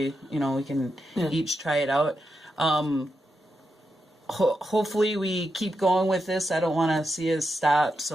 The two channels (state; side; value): normal; both; correlation 0.86